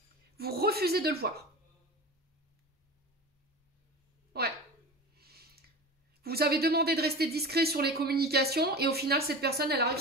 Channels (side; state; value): both; normal; correlation 0.31